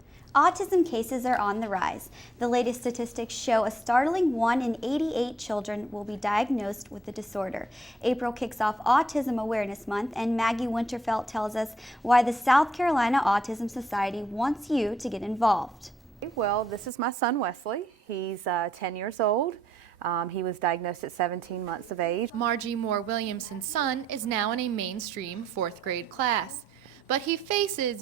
Autism cases are on the rise. The latest statistics show a startling 1 in 88 children will be diagnosed with the disorder. April kicks off Autism Awareness Month, and Maggie Winterfelt tells us why the South Carolina Autism Society wants you to get involved. Well, this is my son Wesley. He's 10 years old. He was diagnosed at 17 months of age. Margie Moore Williamson's son is now in a mainstream 4th grade class, but he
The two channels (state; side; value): normal; both; correlation 0.74